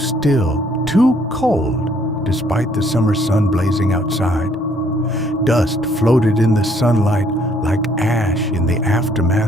too cold, despite the summer sun blazing outside. Dust floated in the sunlight like ash in the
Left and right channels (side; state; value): both; normal; correlation 0.65